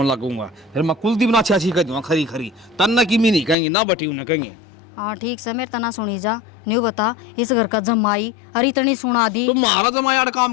लगूंगा, फिर मैं कुलदीप ना अच्छी कह दूंगा खरी खरी, तन्ना की मी नहीं कहेंगे ना बटी उन्हें कहेंगे। हाँ ठीक से मेरे तना सुनी जा, न्यू बता इस घर का जमाई अरे इतनी सुना दी। तो मारा जमा यार काम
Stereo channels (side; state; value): right; drops out; at 3.6 s